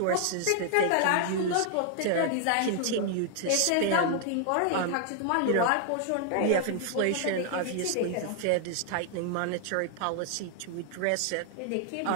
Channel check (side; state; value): both; different; correlation 0.00